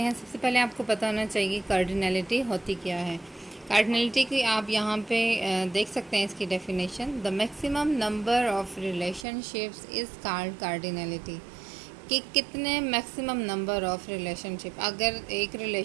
सबसे पहले आपको पता होना चाहिए कार्डिनलिटी होती क्या है। कार्डिनलिटी की आप यहाँ पे देख सकते हैं इसकी definition. The maximum number of relationships is called cardinality. कि कितने मैक्सिमम नंबर ऑफ़ रिलेशनशिप, अगर एक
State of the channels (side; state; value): left; drops out; at 9.2 s